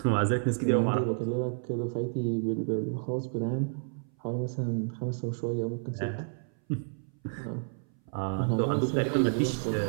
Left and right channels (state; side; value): silent; left; 58 dB below the other